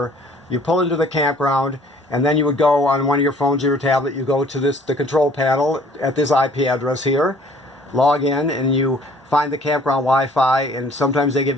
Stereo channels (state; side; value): normal; both; correlation 0.55